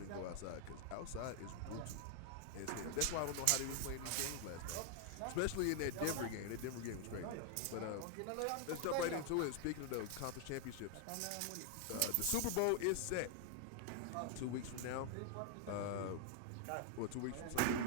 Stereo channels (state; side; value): different; both; correlation 0.00